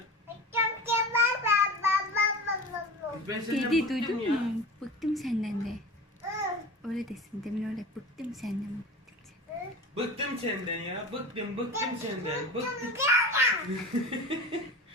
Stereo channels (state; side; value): normal; both; correlation 0.32